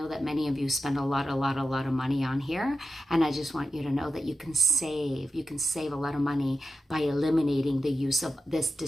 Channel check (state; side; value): normal; both; correlation 0.92